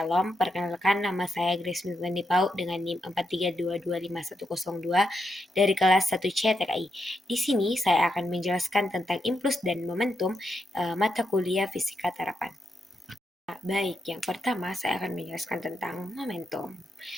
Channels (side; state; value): both; normal; correlation 0.83